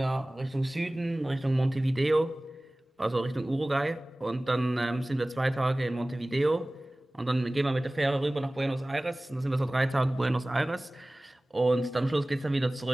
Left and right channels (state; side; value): normal; both; correlation 0.98